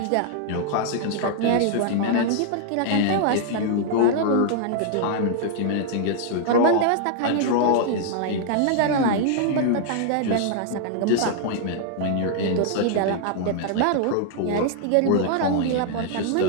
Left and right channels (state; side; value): different; both; correlation 0.00